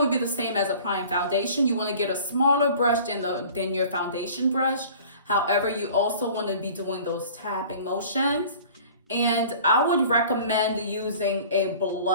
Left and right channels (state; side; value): inverted; both; correlation -0.46